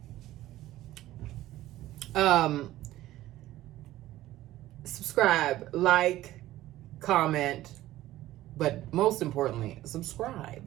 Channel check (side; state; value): left; quieter; 15.2 dB